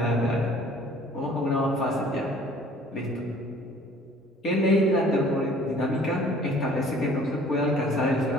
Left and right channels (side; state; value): both; normal; correlation 0.53